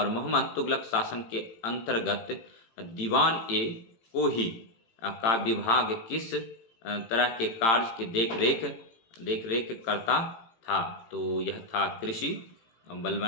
मोहम्मद तुगलक शासन के अंतर्गत दीवान ए कोही का विभाग किस तरह के कार्य की देख रेख करता था? तो यह था कृषि।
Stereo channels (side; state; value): right; late; 18 ms